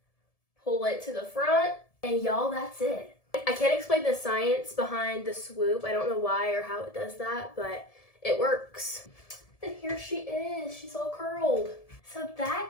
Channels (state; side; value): late; right; 1.7 ms